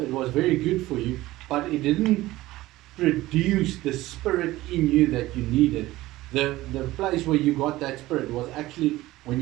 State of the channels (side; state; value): left; quieter; 17.4 dB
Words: it was very good for you, but it didn't produce the spirit in you that you needed. The place where you got that spirit was actually when